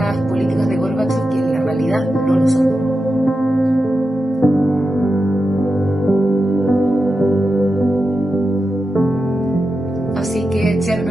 políticas de Gorbachev que en la realidad no lo son. Así que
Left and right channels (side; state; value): both; normal; correlation 0.90